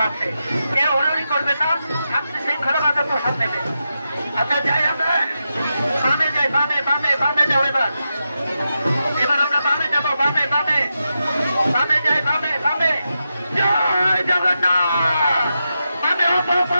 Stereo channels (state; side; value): inverted; both; correlation -0.88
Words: আছে, কেউ হুড়ুহুড়ি করবেন না, শান্তি শৃঙ্খল ভাবে প্রসাদ নেবেন। আচ্ছা যাই আমরা বামে যাই, বামে বামে বামে যাও, এবার আমরা বামে যাবো, বামে বামে বামে যাই, বামে বামে জয় জগন্নাথ, বামে